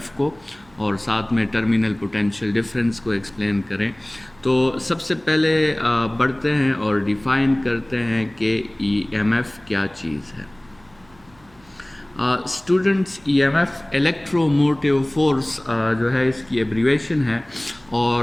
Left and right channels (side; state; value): right; noise; hum, 29 dB below the sound